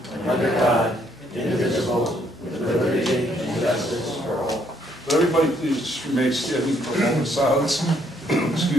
under God, indivisible, with liberty and justice for all. But everybody please just remain standing for a moment of silence.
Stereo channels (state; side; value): normal; both; correlation 0.69